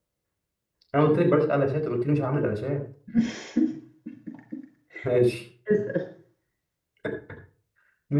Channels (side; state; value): both; identical; correlation 1.00